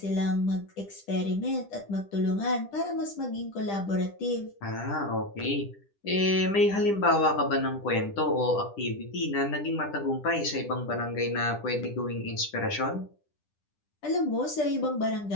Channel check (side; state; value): right; late; 10 ms